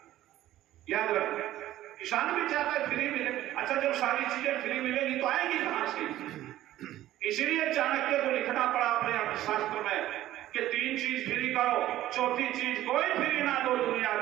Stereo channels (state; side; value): quieter; left; 14.1 dB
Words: याद रखना, किसान भी चाहता है फ्री मिले। अच्छा, जब सारी चीजें फ्री मिलेगी तो आएगी कहां से? इसीलिए चाणक्य को लिखना पड़ा अपने अर्थशास्त्र में कि 3 चीज फ्री करो, चौथी चीज कोई फ्री ना दो दुनिया